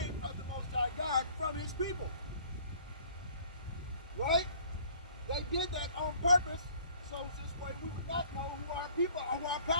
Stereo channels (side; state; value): both; inverted; correlation -0.54